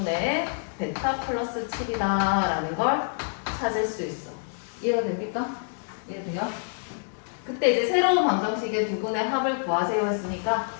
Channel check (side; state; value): right; silent; digital silence